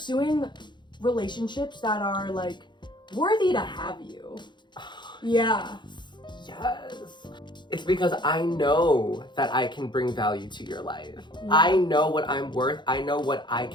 relationships that are like worthy to have you. Yeah. Yes. It's because I know that I can bring value to your life. Yeah. I know what I'm worth. I know what I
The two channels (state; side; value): late; right; 0.22 ms